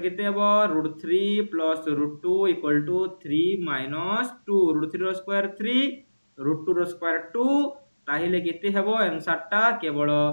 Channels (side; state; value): both; inverted; correlation -1.00